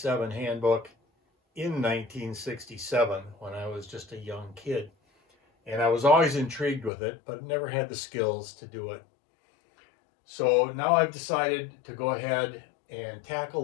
handbook in 1967 when I was just a young kid. And I was always intrigued with it, but never had the skills to do it. So now I've decided to go ahead and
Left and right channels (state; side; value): drops out; right; at 6.9 s